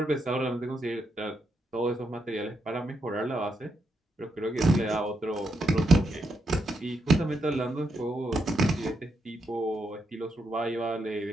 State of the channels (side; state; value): both; normal; correlation 0.81